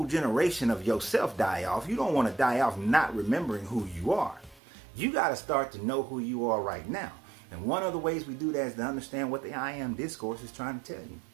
generation of yourself die off. You don't want to die off not remembering who you are. You got to start to know who you are right now. And one of the ways we do that is to understand what the I Am Discourse is trying to tell you.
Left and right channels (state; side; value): drops out; left; at 4.6 s